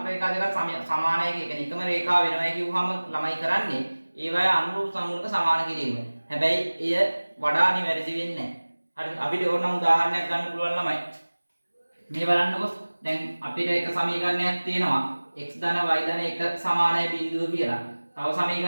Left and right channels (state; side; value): inverted; both; correlation -1.00